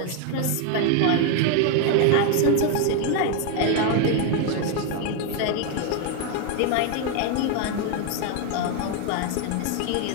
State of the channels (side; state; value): both; different; correlation 0.01